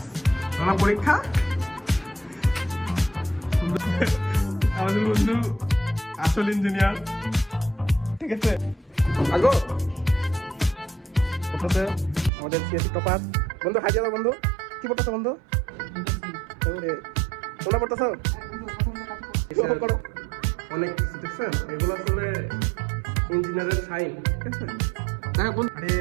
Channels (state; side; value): drops out; left; at 12.3 s